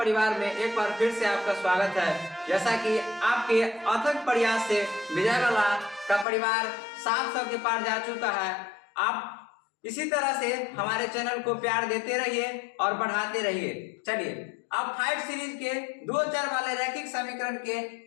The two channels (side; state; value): right; drops out; at 6.2 s